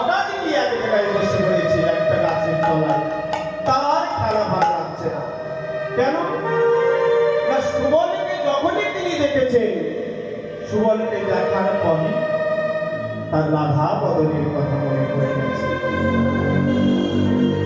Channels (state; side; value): identical; both; correlation 1.00